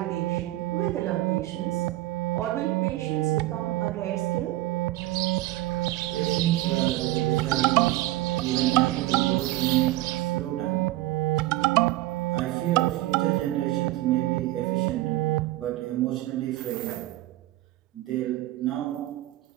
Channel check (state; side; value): quieter; left; 17.1 dB